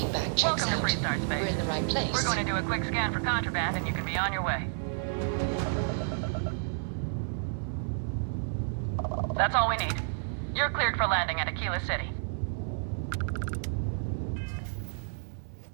checks Welcome out. to Freestar Space. We're in the right place. We're going to do a quick scan for contraband, and you can be on your way. That's all we need. You're cleared for landing at Aquila City.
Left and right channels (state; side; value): silent; left; 57 dB below the other